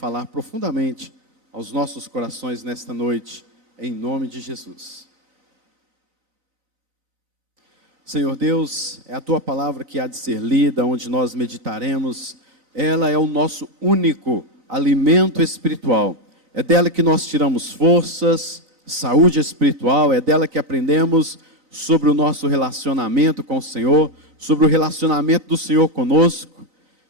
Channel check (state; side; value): late; left; 3.9 ms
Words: profundamente aos nossos corações nesta noite, em nome de Jesus. Senhor Deus, é a Tua palavra que há de ser lida, onde nós meditaremos. Ela é o nosso único alimento espiritual. É dela que nós tiramos forças, saúde espiritual. É dela que aprendemos sobre o nosso relacionamento com o Senhor, sobre o relacionamento do Senhor conosco.